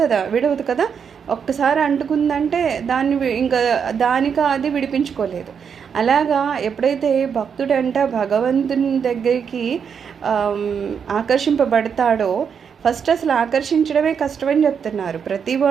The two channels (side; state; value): left; quieter; 6.9 dB